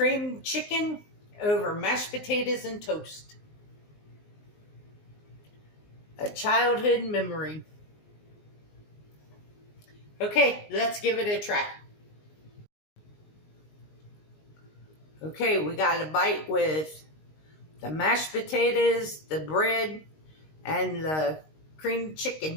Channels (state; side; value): late; right; 19 ms